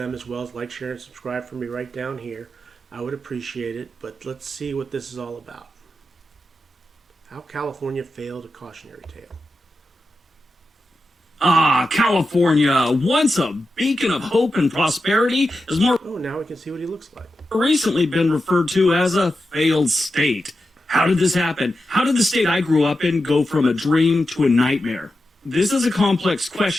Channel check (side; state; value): both; normal; correlation 0.90